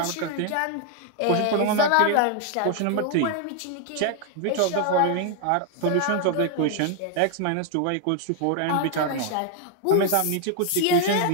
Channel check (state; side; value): different; both; correlation 0.00